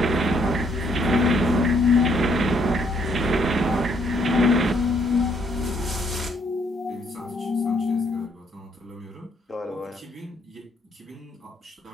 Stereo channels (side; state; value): both; normal; correlation 0.70